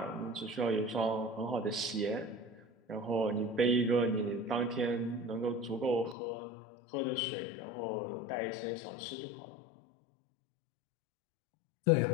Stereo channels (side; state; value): right; drops out; at 6.2 s